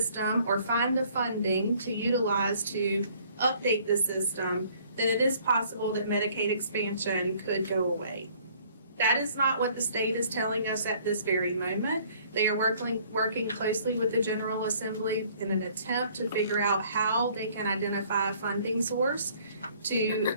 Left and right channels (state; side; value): inverted; both; correlation -0.58